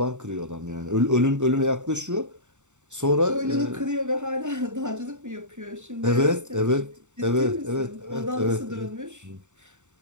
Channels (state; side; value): late; left; 0.84 ms